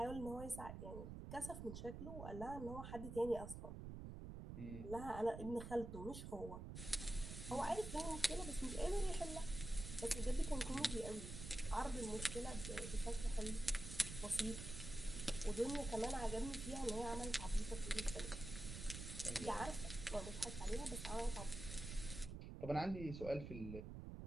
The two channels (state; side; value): noise; right; rumble, 8 dB below the sound